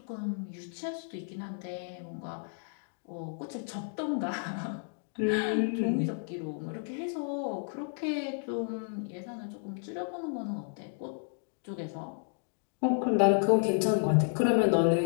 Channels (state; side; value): silent; right; 56 dB below the other